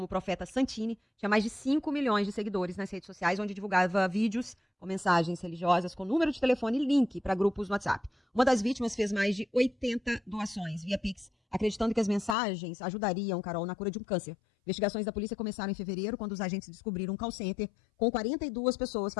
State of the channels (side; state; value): right; drops out; at 12.4 s